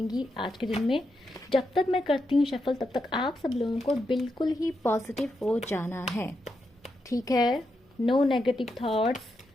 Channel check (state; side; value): normal; both; correlation 0.84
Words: आज के दिन में। जब तक मैं करती हूँ शफल तब तक आप सब लोगों को बिल्कुल ही पॉजिटिव हो जाना है, ठीक है? No negative thoughts.